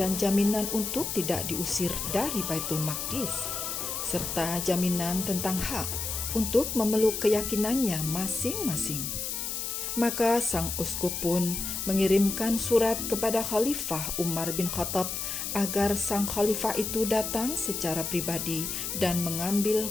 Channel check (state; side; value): noise; left; hiss, 3 dB below the sound